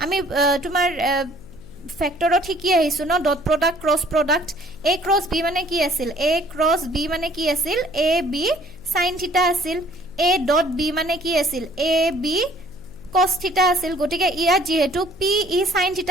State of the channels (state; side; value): noise; left; hum, 20 dB below the sound